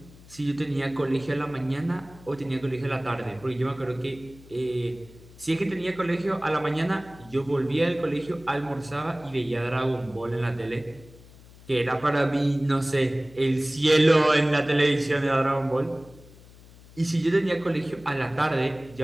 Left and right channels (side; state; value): left; noise; hum, 22 dB below the sound